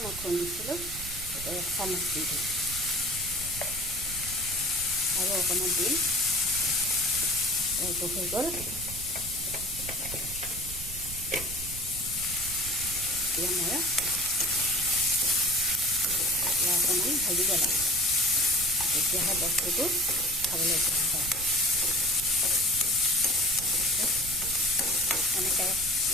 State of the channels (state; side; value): noise; right; rumble, 11 dB below the sound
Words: মই খুন্দিছিলোঁ, এতিয়া 1 চামুচ দি দিম, আৰু অকণমান দিম। এইটো হৈ গ'ল। এতিয়া মই অকণমান ভাজিব লাগিব, তেতিয়াহে বস্তুটো খাবলৈ ভাল হয়। এনেকৈ